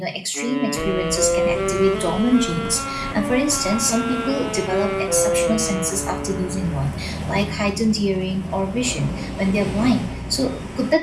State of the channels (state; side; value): identical; both; correlation 1.00